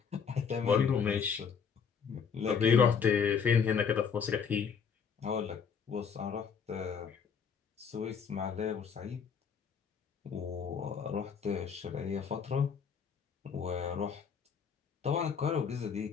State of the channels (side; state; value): right; quieter; 6.6 dB